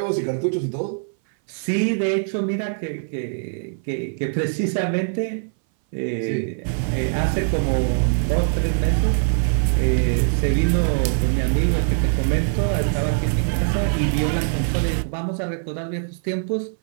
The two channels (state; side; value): silent; left; 59 dB below the other